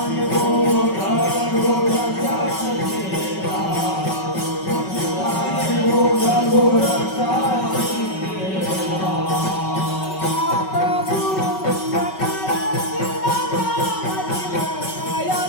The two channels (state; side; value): late; right; 5.3 ms